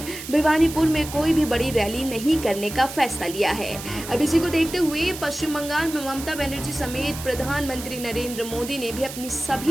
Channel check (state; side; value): noise; right; hiss, 11 dB below the sound